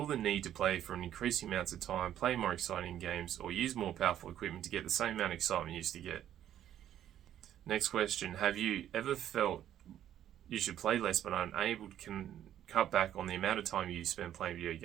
the need to play for an increasing amount of time, play more exciting games, or use more powerful equipment to get the same amount of excitement you used to get? Next question, have you ever felt you should play less but are unable to cut back on the amount of time you spend playing video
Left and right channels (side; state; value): left; quieter; 11.1 dB